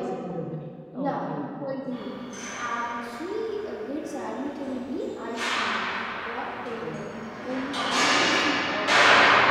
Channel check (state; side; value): identical; both; correlation 1.00